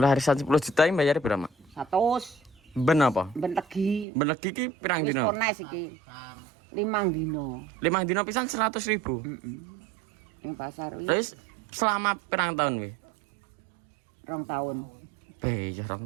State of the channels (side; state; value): left; drops out; at 4.0 s